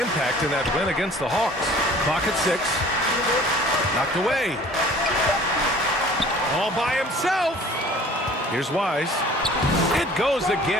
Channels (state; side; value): normal; both; correlation 0.49